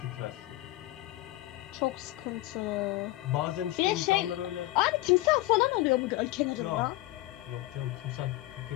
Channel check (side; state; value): right; quieter; 17.8 dB